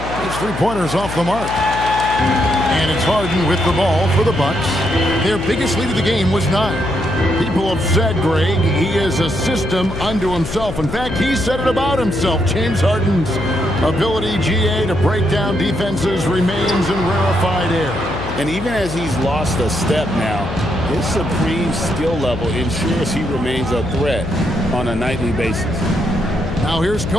His three-pointers off the mark. And it's Harden with the ball for the Bucks. Their biggest lead of the game was 9. People have said, Greg, he is a system unto himself. In fact, he said it about himself. James Harden's ability, GA, to break down defenses remains in rarefied air. And even as he's lost a step now, his supreme skill level ensures he remains a threat on a nightly basis. Now here's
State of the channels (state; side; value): noise; left; hum, 8 dB below the sound